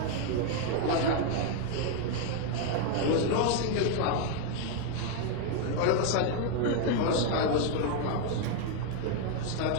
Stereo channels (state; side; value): different; both; correlation 0.00